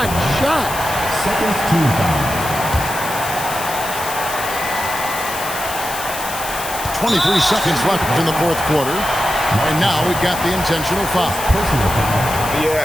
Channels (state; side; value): noise; left; hiss, 8 dB below the sound